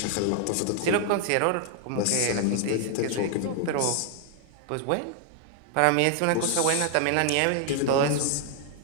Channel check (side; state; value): both; different; correlation 0.00